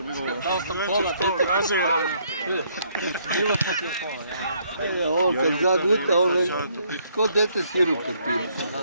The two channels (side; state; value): both; inverted; correlation -0.68